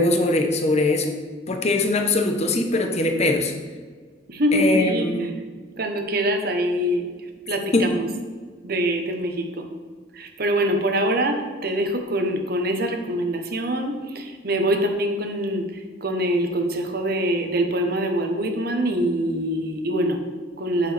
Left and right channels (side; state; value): both; normal; correlation 0.44